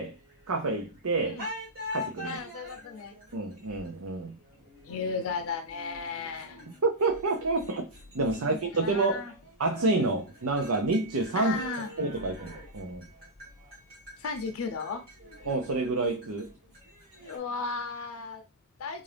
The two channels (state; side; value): normal; both; correlation -0.09